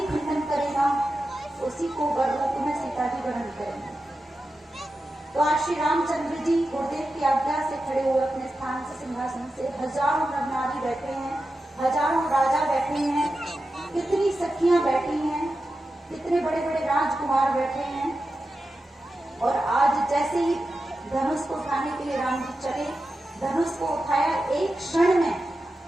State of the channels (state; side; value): normal; both; correlation 0.91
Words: खंडन करेगा उसी को वररूप में सीता जी ग्रहण करेंगे। तो आज श्री रामचंद्र जी गुरुदेव की आज्ञा से खड़े हुए अपने स्थान से, सिंहासन से, हजारों नर नारी बैठे हैं, हजारों राजा बैठे हैं, कितनी सखियां बैठी हैं, कितने बड़े बड़े राजकुमार बैठे हैं। और आज जैसे ही धनुष को उठाने के लिए राम जी चले, धनुष को उठाया एक क्षण में,